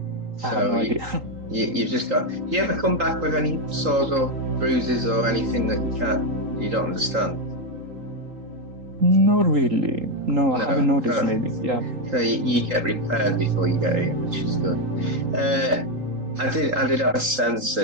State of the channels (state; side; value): late; left; 3.8 ms